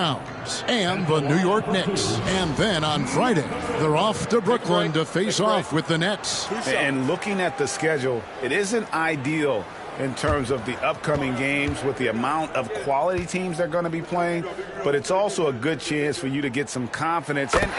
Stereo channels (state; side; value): identical; both; correlation 1.00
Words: and the New York Knicks. And then on Friday, they're off to Brooklyn to face off with the Nets. And looking at the schedule, it isn't ideal in terms of the upcoming games with the amount of quality teams they're going to be playing, but it's also a good chance for you to get some confidence